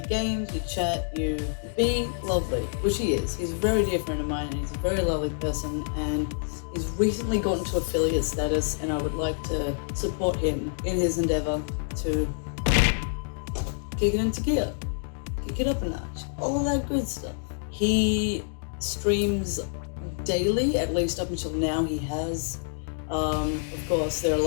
you chat, you be lovely, which he is. He's a very dear friend of mine and he's a very lovely person, and he's recently gotten to affiliate status, and I would like to support him in his endeavor to kick it into gear, kick it up a notch, all of that good stuff. He streams daily, at least up until now he has. Of course, there are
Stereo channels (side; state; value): right; silent; digital silence